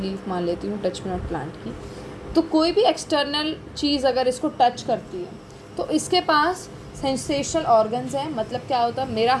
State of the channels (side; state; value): both; identical; correlation 1.00